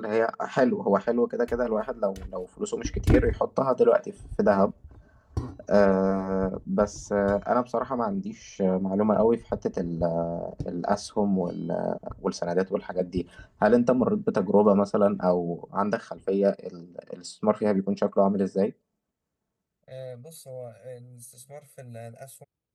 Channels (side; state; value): both; identical; correlation 1.00